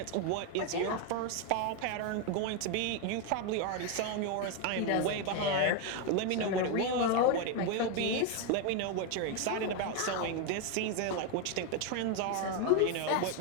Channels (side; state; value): both; different; correlation 0.01